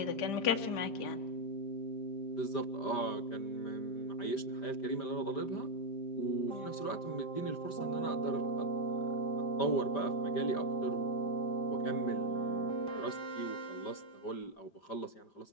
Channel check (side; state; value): right; late; 5.1 ms